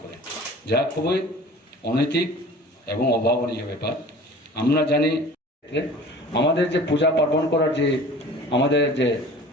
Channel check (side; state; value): both; normal; correlation 0.43